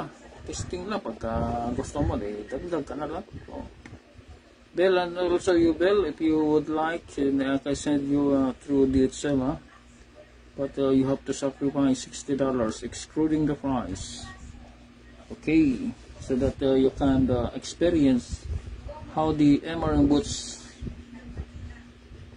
testing lang, pagka gusto mo dagdag ka na lang. Bell, and also you Bell, if you would like, I can send you through DHL, but you have to sacrifice $60 excluding the price. Okay, so that you can experience how the MRM boots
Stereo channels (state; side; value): identical; both; correlation 1.00